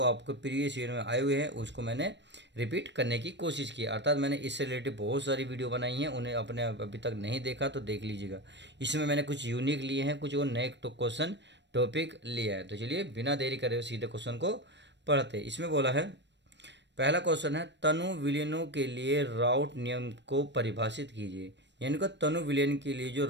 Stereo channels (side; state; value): left; late; 0.52 ms